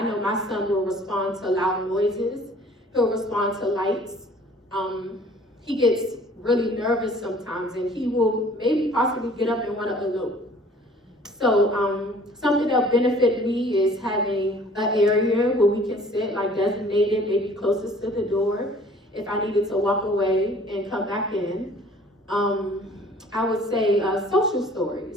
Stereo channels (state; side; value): normal; both; correlation 0.52